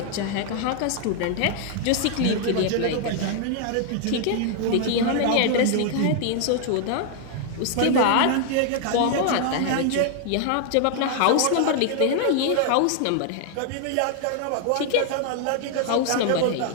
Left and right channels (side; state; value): both; different; correlation 0.00